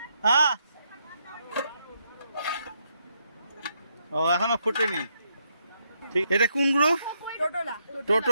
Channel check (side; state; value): both; inverted; correlation -0.78